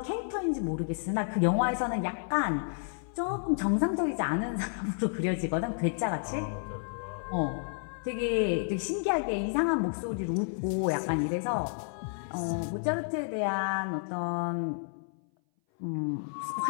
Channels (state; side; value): silent; right; 57 dB below the other